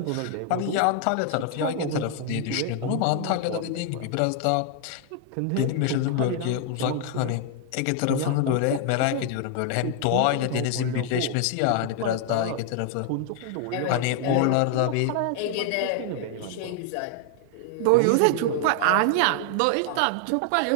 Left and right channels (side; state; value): both; different; correlation 0.00